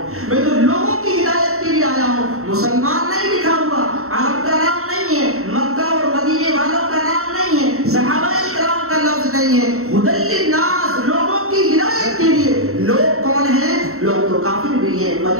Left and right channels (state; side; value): late; left; 0.63 ms